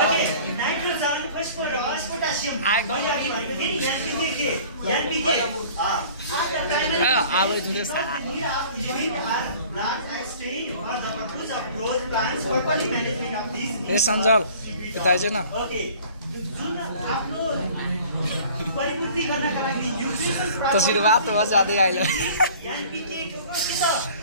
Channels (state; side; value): inverted; both; correlation -0.48